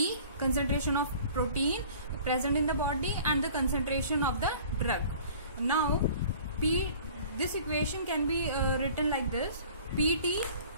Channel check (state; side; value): inverted; both; correlation -0.47